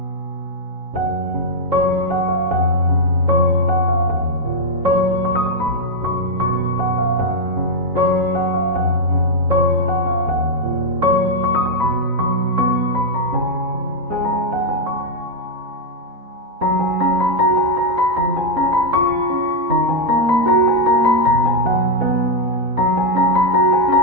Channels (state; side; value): late; left; 3.9 ms